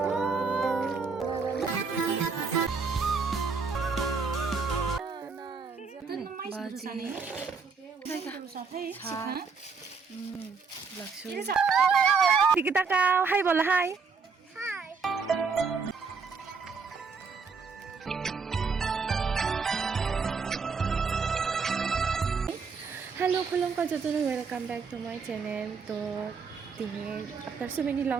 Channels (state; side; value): quieter; left; 5.2 dB